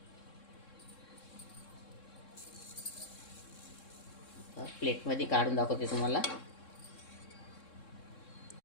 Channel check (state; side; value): late; right; 3.7 ms